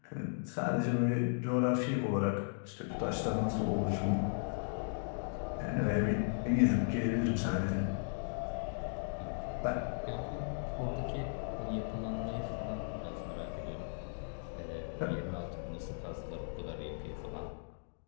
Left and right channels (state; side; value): silent; right; digital silence